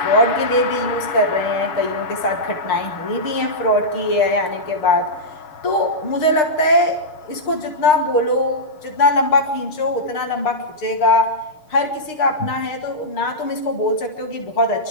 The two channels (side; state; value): right; late; 6.6 ms